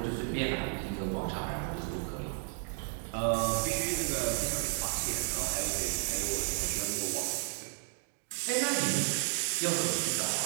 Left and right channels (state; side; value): silent; left; 56 dB below the other